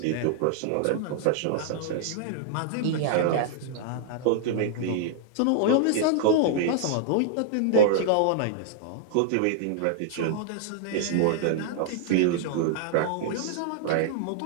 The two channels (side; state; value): both; different; correlation -0.01